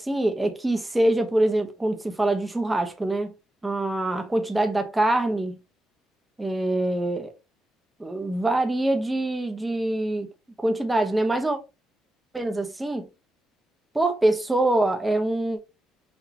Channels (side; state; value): both; normal; correlation 0.92